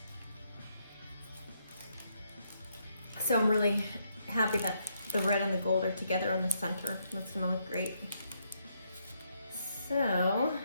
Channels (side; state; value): both; inverted; correlation -0.76